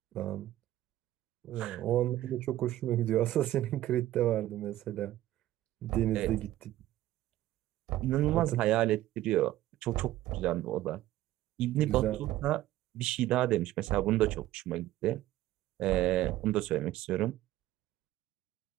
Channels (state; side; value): quieter; left; 14.7 dB